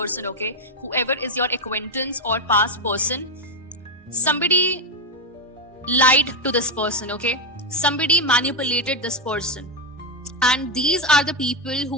okay. Whoever is your acquaintance or past person, somebody lied to this person, okay. Somebody manipulated this person. And these are the people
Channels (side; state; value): both; normal; correlation 0.07